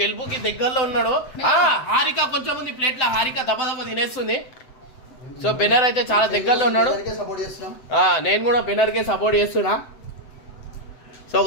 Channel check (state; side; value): late; right; 7.9 ms